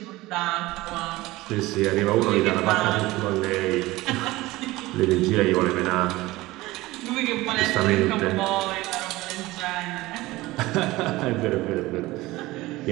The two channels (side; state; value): left; quieter; 19.1 dB